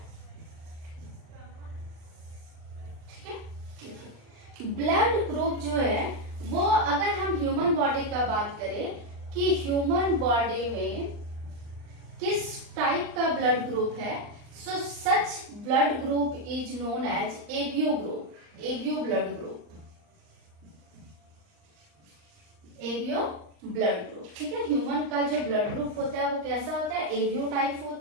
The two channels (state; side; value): late; left; 39 ms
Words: ठीक है। देखिए ब्लड ग्रुप जो है वो, अगर हम ह्यूमन बॉडी का बात करें कि ह्यूमन बॉडी में किस टाइप का ब्लड ग्रुप है, so such blood group is known as ABO group, ABO blood group, ABO blood group, ठीक है। ह्यूमन का जो ब्लड ग्रुप होता है वो कैसा होता है, एबीओ टाइप